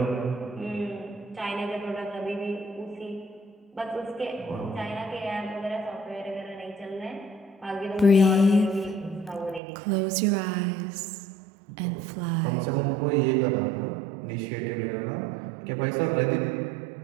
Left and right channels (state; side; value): drops out; left; at 9.6 s